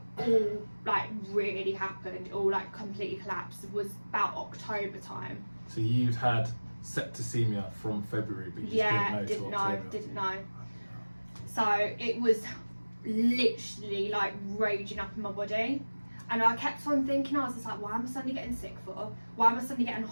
all like really happened, all like completely collapsed, was about October time. So you'd had septicemia from February, but you didn't know. So it was literally like raging up in my body, and I kept on thinking, I was just like, why am I suddenly getting sick for? Why am I suddenly getting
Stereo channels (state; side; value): inverted; both; correlation -1.00